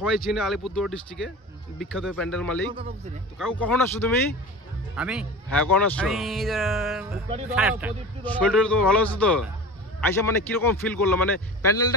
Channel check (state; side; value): normal; both; correlation 0.34